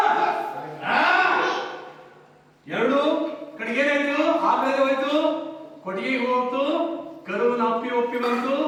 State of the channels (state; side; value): identical; both; correlation 1.00